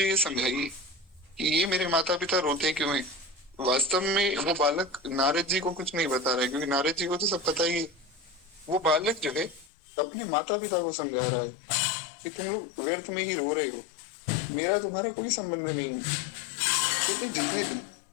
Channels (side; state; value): right; drops out; at 9.7 s